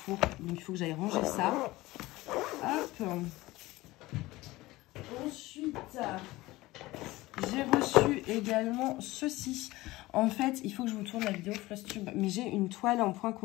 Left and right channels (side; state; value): right; quieter; 19.0 dB